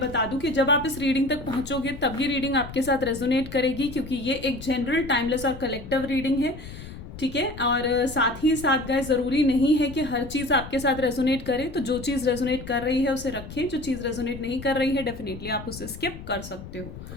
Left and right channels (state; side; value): noise; left; rumble, 13 dB below the sound